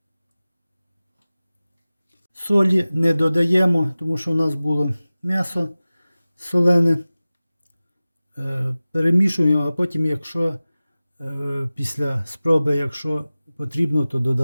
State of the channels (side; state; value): both; inverted; correlation -0.96